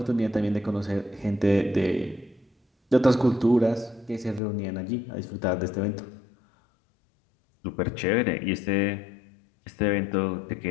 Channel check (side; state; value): right; drops out; at 4.4 s